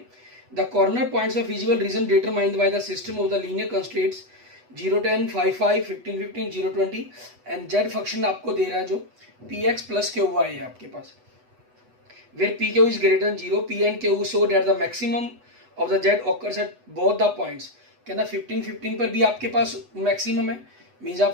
The corner points of feasible region determined by the system of the linear constraints 0, 10, 5, 5, 15, 15, 0, 20 and Z function आपको दे रहा है जो P X plus Q Y है आपके पास, where P Q is greater than 0, P and Q so that the maximum of the Z occurs at both the points. कहना 15, 15 पर भी आपके पास मैक्सिमम है, मीन्स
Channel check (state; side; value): late; left; 8.1 ms